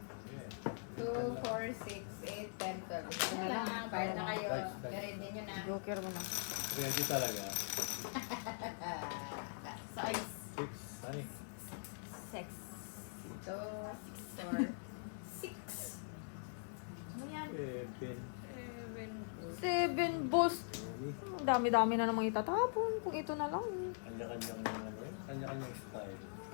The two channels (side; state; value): right; silent; digital silence